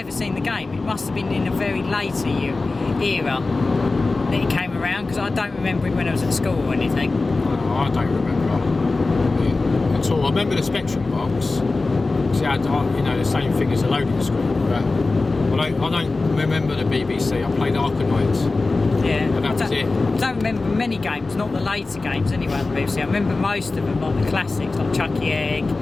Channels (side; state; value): right; quieter; 3.5 dB